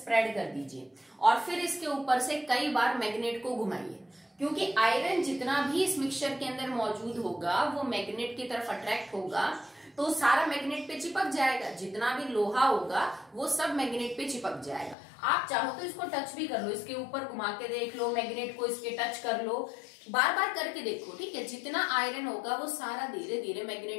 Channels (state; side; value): drops out; right; at 15.0 s